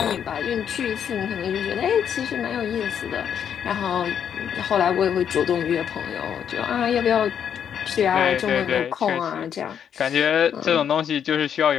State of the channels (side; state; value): right; quieter; 8.5 dB